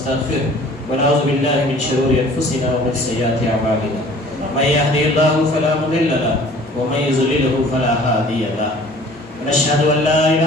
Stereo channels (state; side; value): normal; both; correlation 0.50